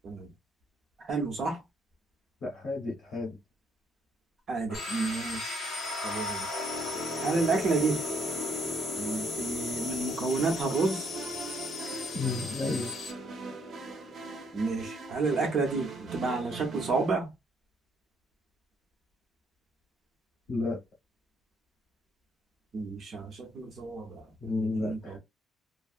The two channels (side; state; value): both; normal; correlation 0.69